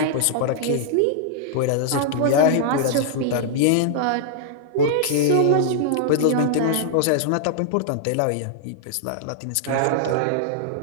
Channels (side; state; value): both; different; correlation -0.01